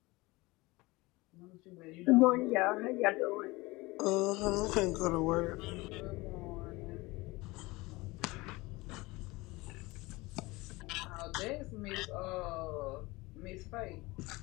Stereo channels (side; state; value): right; quieter; 22.2 dB